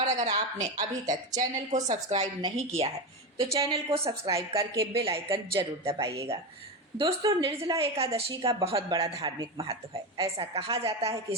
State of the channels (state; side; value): normal; both; correlation 0.17